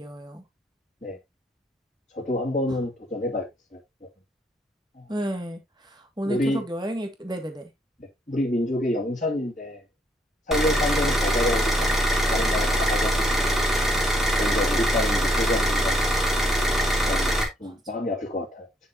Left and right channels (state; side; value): normal; both; correlation 0.70